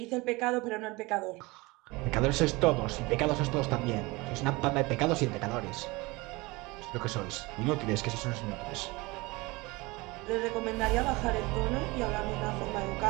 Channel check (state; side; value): quieter; left; 23.6 dB